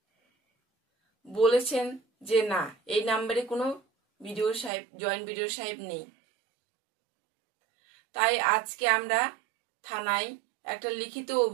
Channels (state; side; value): drops out; left; at 4.7 s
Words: বলেছেন যে না, এই নাম্বারে কোনো বিডিও সাহেব, জয়েন্ট বিডিও সাহেব নেই। তাই আজকে আমরা থানায় একটা লিখিত